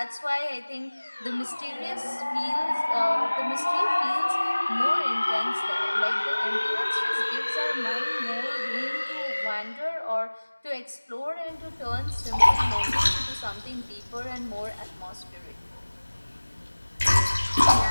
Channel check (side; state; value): both; inverted; correlation -1.00